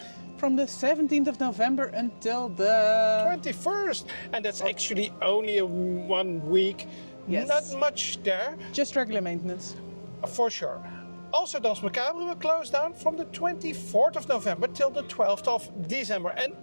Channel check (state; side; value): inverted; both; correlation -1.00